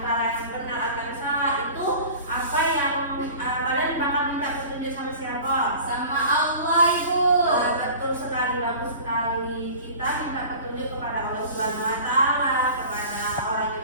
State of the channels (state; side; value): inverted; both; correlation -0.40